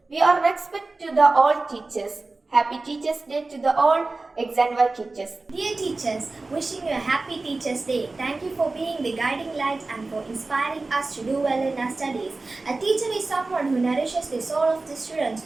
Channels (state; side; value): quieter; left; 3.4 dB